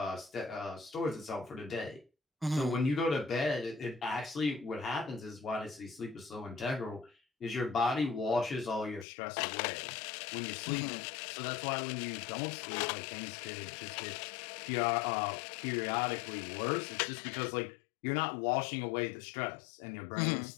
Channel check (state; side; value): drops out; right; at 9.1 s